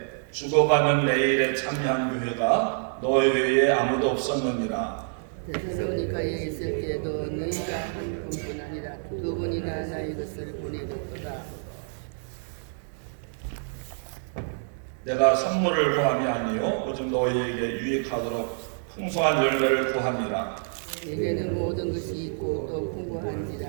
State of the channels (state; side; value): silent; left; digital silence